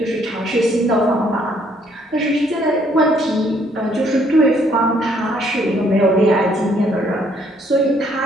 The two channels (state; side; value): normal; both; correlation 0.66